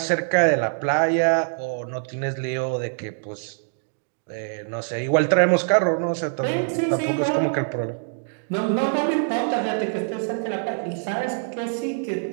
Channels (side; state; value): left; silent; digital silence